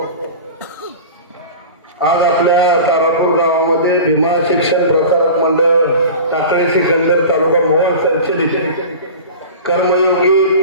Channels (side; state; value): both; inverted; correlation -0.35